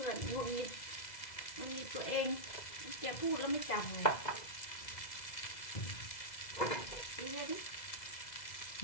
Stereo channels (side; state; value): right; late; 2.0 ms